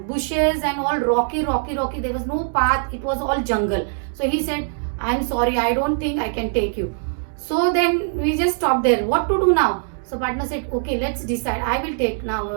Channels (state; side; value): silent; left; digital silence